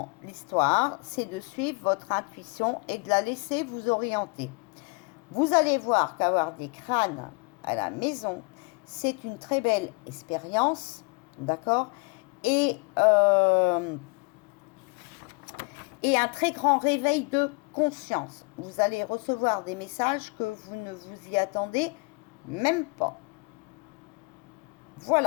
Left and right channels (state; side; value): quieter; right; 32.2 dB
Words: l'histoire, c'est de suivre votre intuition et de la laisser vous orienter. Vous allez voir qu'avoir des crânes à la maison, c'est une très belle expérience, d'accord, et un très grand réveil de conscience. Vous allez recevoir des messages que vous ne vous y attendez même pas.